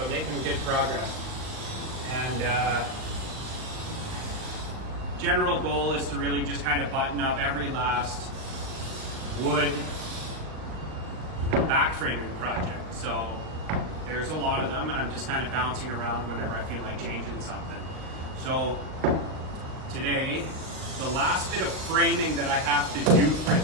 making good progress. And general goal is to really just kind of button up every last wood back framing project. So, there's a lot of them, and I'm just kind of bouncing around whenever I feel like changing something. So, today, the last bit of framing that I have to do for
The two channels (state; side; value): late; left; 38 ms